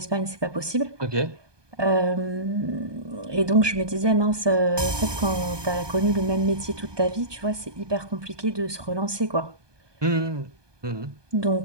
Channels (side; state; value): left; late; 1.2 ms